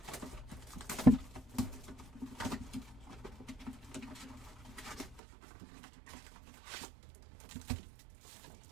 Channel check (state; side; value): drops out; left; at 5.2 s